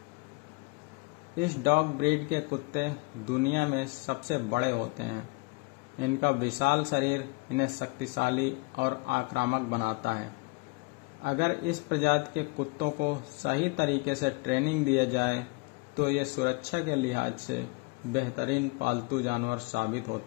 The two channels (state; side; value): quieter; right; 28.0 dB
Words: इस डॉग ब्रीड के कुत्ते दुनिया में सबसे बड़े होते हैं। इनका विशाल शरीर इन्हें शक्तिशाली और आक्रामक बनाता है। अगर इस प्रजाति के कुत्तों को सही तरीके से ट्रेनिंग दिया जाए तो ये सुरक्षा के लिहाज से बेहतरीन पालतू जानवर साबित